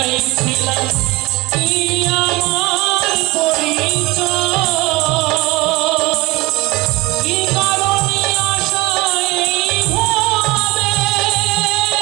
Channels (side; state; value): left; quieter; 21.9 dB